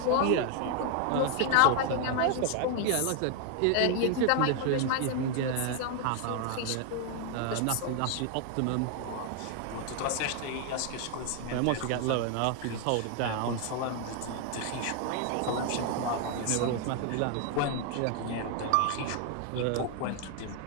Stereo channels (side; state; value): both; different; correlation 0.00